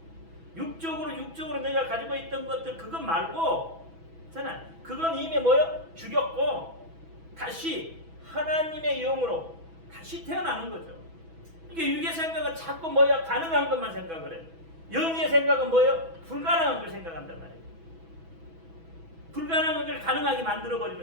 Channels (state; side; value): late; left; 6.1 ms